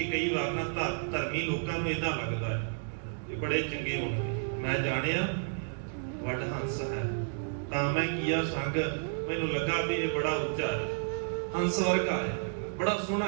ਕਈ ਵਾਰ ਨਾ ਧਰਮੀ ਲੋਕਾਂ ਨੂੰ ਇਦਾਂ ਲੱਗਦਾ ਹੈ ਕਿ ਬੜੇ ਚੰਗੇ ਹੋਣਗੇ। ਮੈਂ ਜਾਣਿਆ ਵੱਡ ਹੰਸ ਹੈ, ਤਾਂ ਮੈਂ ਕੀਆ ਸੰਗ, ਮੈਨੂੰ ਲੱਗਾ ਵੀ ਇਹ ਬੜਾ ਉੱਚਾ ਹੈ, ਹੰਸ ਵਰਗਾ ਹੈ, ਬੜਾ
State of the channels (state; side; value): silent; left; digital silence